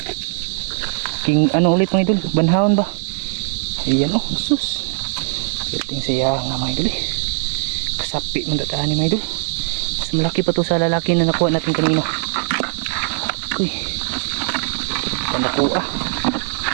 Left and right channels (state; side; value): silent; left; 61 dB below the other